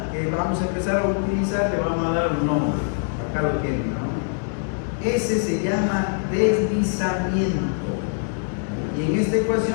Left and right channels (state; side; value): silent; right; digital silence